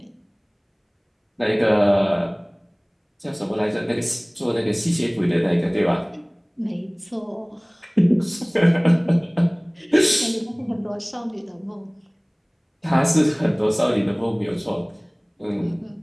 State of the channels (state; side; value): identical; both; correlation 1.00